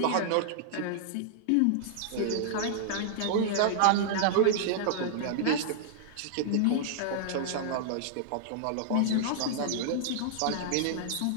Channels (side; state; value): both; different; correlation -0.01